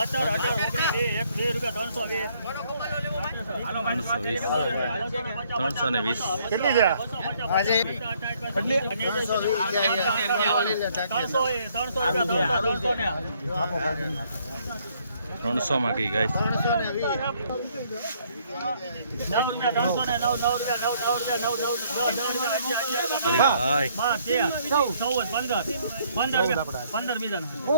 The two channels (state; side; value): inverted; both; correlation -0.66